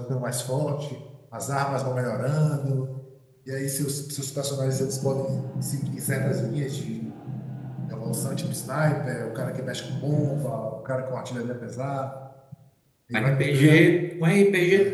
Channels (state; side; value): identical; both; correlation 1.00